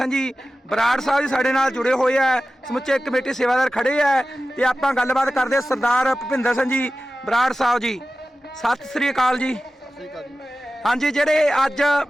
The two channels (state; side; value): normal; both; correlation 0.95